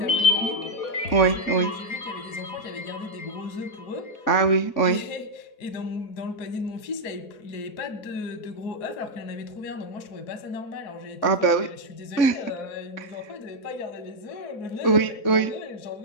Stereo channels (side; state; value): right; late; 3.6 ms